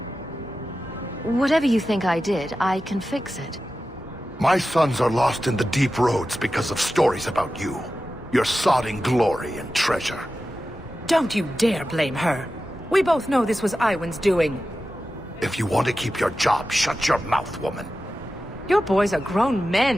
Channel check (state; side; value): normal; both; correlation 0.93